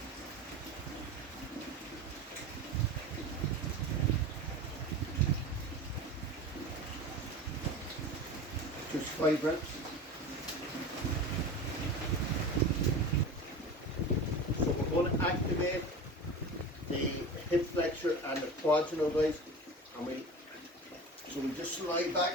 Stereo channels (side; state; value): both; normal; correlation 0.32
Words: Just 5 reps. So we're going to activate the hip flexor and the quads, guys. And we just slide